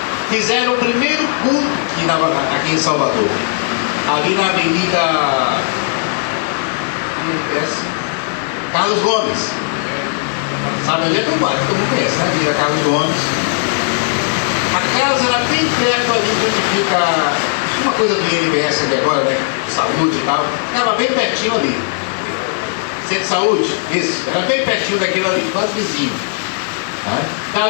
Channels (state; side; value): silent; right; 59 dB below the other